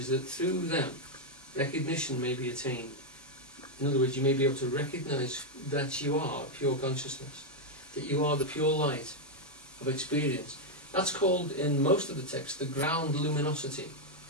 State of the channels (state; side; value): normal; both; correlation 0.00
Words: that through them, recognition may be attained. In other words, you may be able to recognize that you are pure consciousness, that you are the pure light of experience. That's called, in most of the text, the ground luminosity,